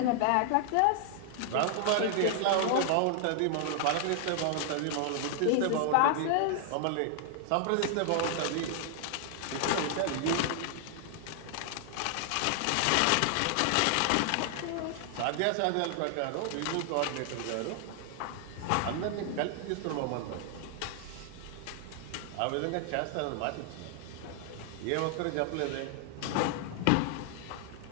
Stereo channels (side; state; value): both; different; correlation 0.00